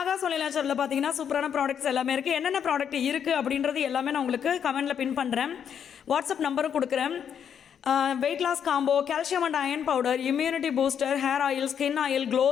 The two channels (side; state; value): right; quieter; 8.2 dB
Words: ஒன்லி நேச்சரில் பார்த்தீங்கன்னா சூப்பரான ப்ராடக்ட்ஸ் எல்லாமே இருக்குது. என்னென்ன ப்ராடக்ட் இருக்குது அப்படின்றது எல்லாமே நான் உங்களுக்கு கமெண்டில் பின் பண்ணுறேன். வாட்ஸ்அப் நம்பரும் கொடுக்குறேன். Weight loss combo, calcium and iron powder, immunity booster, hair oil, skin oil, glow